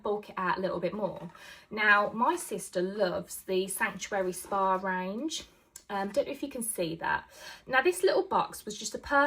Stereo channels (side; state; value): both; identical; correlation 1.00